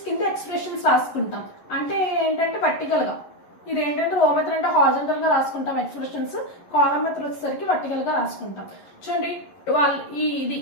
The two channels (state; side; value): late; right; 11 ms